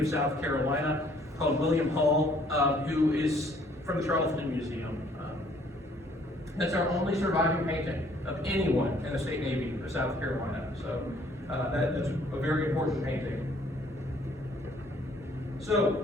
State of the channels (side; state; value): both; normal; correlation 0.61